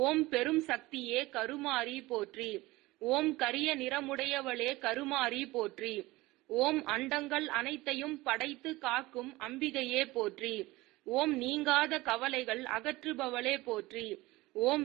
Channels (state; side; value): quieter; left; 20.0 dB